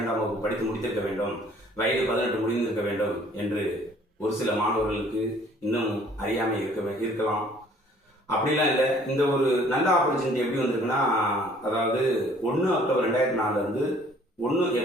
வகுப்பு படித்து முடித்திருக்க வேண்டும், வயது 18 முடிந்திருக்க வேண்டும் என்று ஒரு சில மாணவர்களுக்கு இன்னும் அறியாமல் இருக்கலாம். அப்படிலாம் இல்லை. இந்த ஒரு நல்ல ஆப்பர்ச்சுனிட்டி எப்படி வந்திருக்குன்னா, அதாவது 1 அக்டோபர் 2004 1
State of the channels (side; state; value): both; normal; correlation 0.57